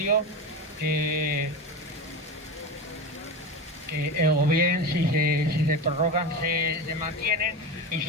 que o bien si se prorrogan se mantienen, y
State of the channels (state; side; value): normal; both; correlation 0.22